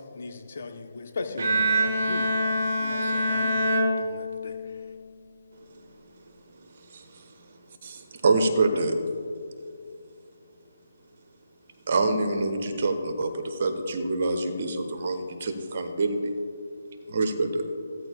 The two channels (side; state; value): both; inverted; correlation -0.81